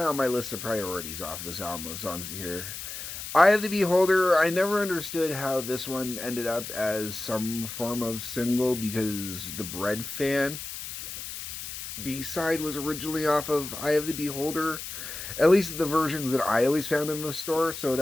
my list of priorities off this album of songs to hear. Eye of the Beholder, I never understood how this one ended up as some form of single because the Bread Fan B-side was originally off of Eye of the Beholder. At least the versions that I always found in the store, so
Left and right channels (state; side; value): noise; left; hiss, 8 dB below the sound